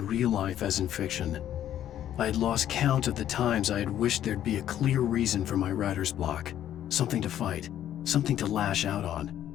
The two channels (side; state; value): right; quieter; 11.3 dB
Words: real life as in fiction. I had lost count of the times I had wished there'd be a clear reason for my writer's block. Something to fight, something to lash out on.